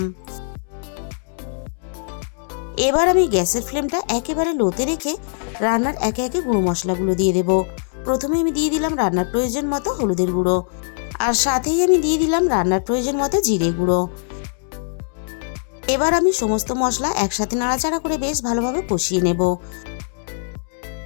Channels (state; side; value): silent; right; digital silence